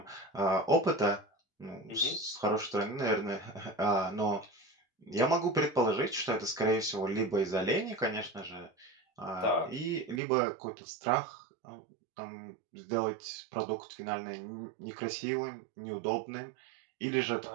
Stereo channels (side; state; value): left; drops out; at 10.2 s